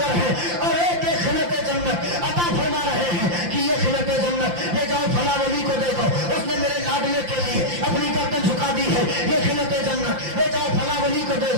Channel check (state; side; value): late; left; 5.8 ms